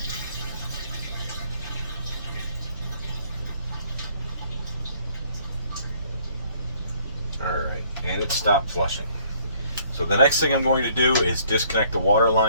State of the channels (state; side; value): inverted; both; correlation -0.62